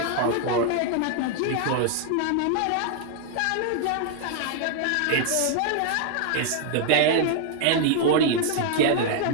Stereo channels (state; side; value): different; both; correlation 0.00